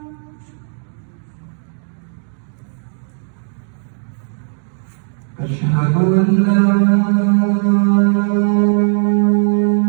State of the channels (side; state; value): left; silent; 68 dB below the other